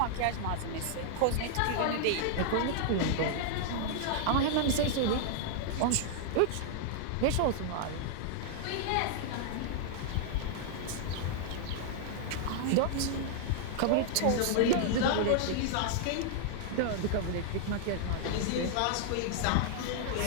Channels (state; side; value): different; both; correlation -0.01